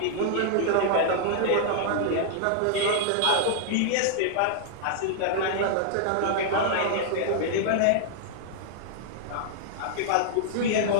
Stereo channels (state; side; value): different; both; correlation -0.01